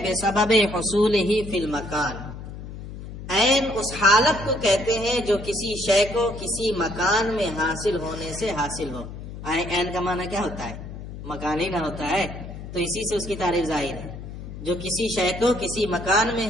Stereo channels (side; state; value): left; noise; hum, 11 dB below the sound